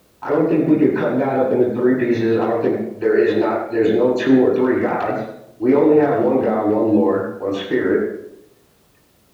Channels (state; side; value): identical; both; correlation 1.00